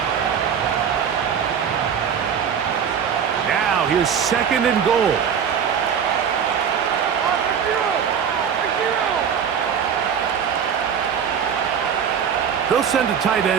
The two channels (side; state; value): left; quieter; 7.7 dB